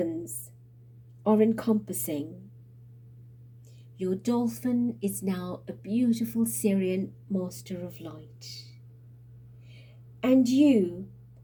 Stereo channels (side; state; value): both; identical; correlation 1.00